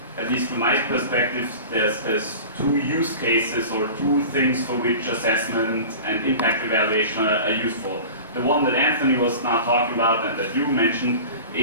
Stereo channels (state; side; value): inverted; both; correlation -0.36